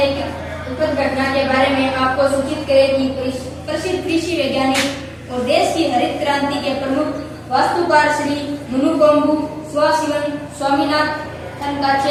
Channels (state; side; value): identical; both; correlation 1.00